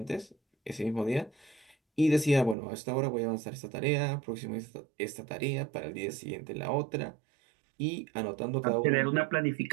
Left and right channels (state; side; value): drops out; left; at 2.6 s